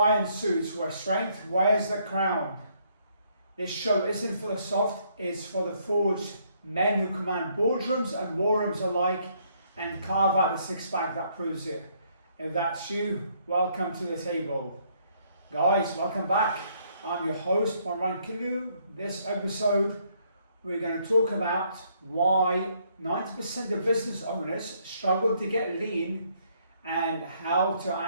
Suits, where strength wears the crown. This show isn't for the soft, it's for the forged men who command boardrooms and war rooms alike and carve out the six-pack that proves it. If that's you, welcome to the table. Guys, welcome back. I'm your host, Marwan Killu. This episode, we're going to talk about why 90% of business owners struggle to get lean and how to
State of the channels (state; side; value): inverted; both; correlation -0.68